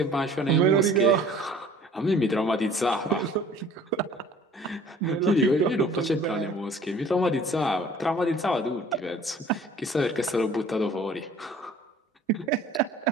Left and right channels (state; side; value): normal; both; correlation 0.51